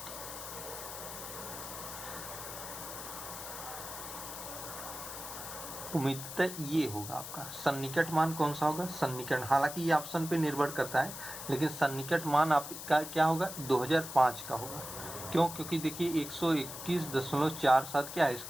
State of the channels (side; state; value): left; noise; hiss, 9 dB below the sound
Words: उम्मीदतः ये होगा आपका सन्निकट मान। कौन सा होगा? सन्निकट। हालांकि ये ऑप्शन पे निर्भर करता है, लेकिन सन्निकट मान आपका क्या होगा? 2005 का होगा। क्यों? क्योंकि देखिए 121.47 क्या है?